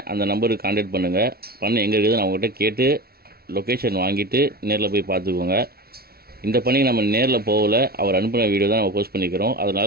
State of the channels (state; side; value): late; left; 0.44 ms